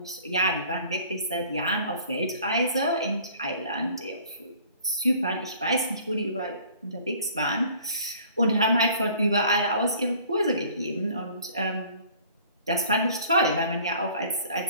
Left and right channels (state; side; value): inverted; both; correlation -0.52